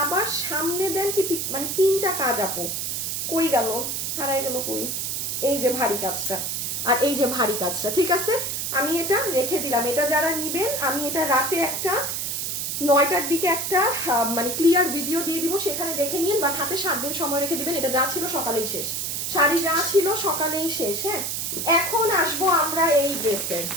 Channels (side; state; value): right; noise; hiss, 2 dB below the sound